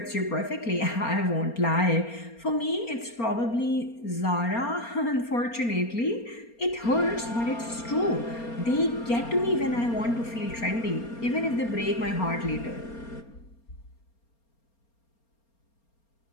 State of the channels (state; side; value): late; right; 4.3 ms